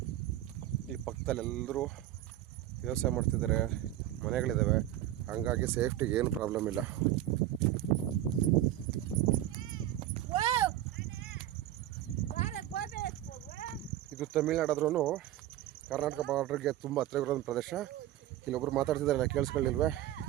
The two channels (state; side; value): quieter; left; 13.4 dB